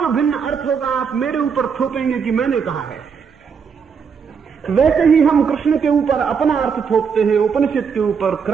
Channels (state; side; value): quieter; left; 6.3 dB